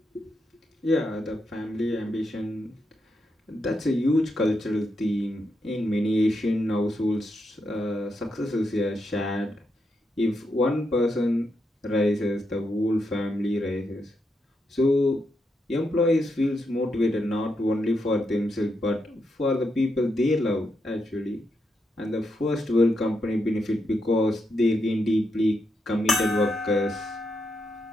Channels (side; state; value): both; normal; correlation 0.83